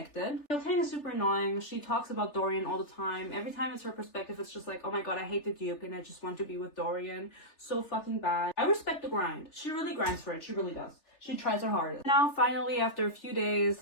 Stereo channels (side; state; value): right; late; 3.4 ms